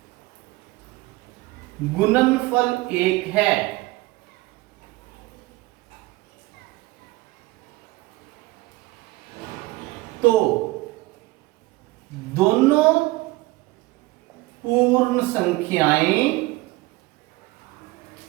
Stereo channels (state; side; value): quieter; left; 20.4 dB